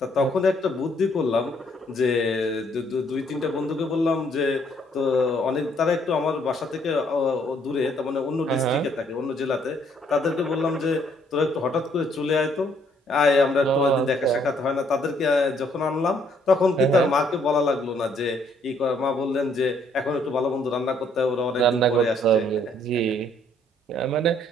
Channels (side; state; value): both; normal; correlation 0.66